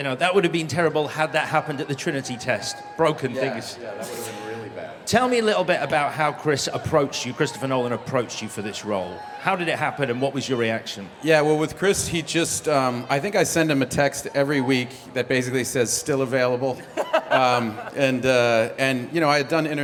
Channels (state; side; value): identical; both; correlation 1.00